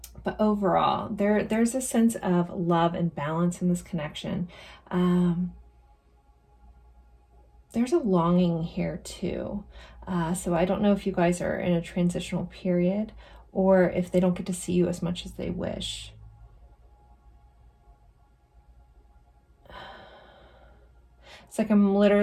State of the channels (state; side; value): identical; both; correlation 1.00